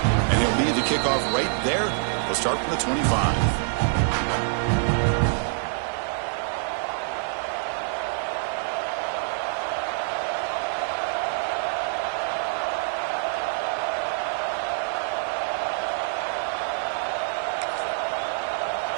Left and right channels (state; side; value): silent; left; 57 dB below the other